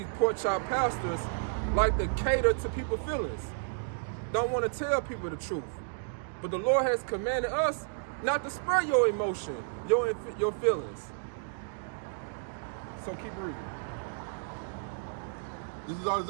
pork chop pastors like to cater to people's feelings. Don't want to tell people the truth. But the Lord has commanded us not to spare your emotion, your feelings. So keep reading. This is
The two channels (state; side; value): silent; left; digital silence